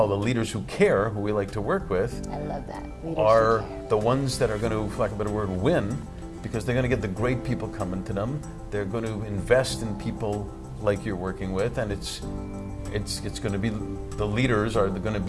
the leaders who care, who we like to work with, I love that. are the ones that are going to, for lack of a better word, win, because they're going to get the great people coming to them. They're going to invest in people like you're working with, and it's going to be the leaders are going to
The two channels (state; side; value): identical; both; correlation 1.00